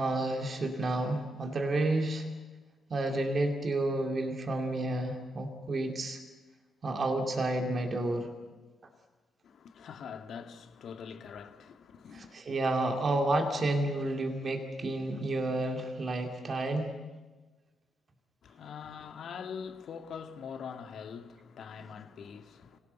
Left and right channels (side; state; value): both; normal; correlation 0.83